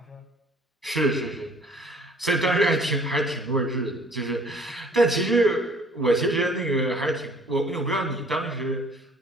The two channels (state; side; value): normal; both; correlation 0.55